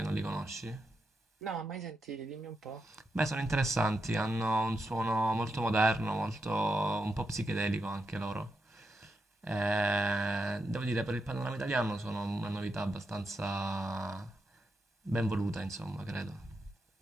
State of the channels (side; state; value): both; normal; correlation 0.85